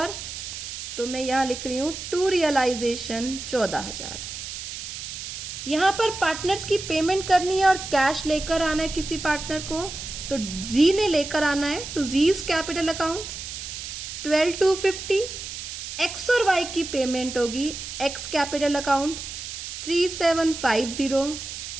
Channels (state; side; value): noise; right; hiss, 8 dB below the sound